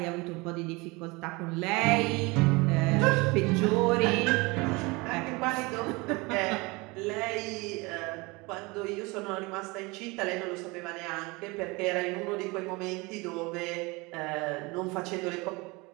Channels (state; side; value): quieter; left; 25.1 dB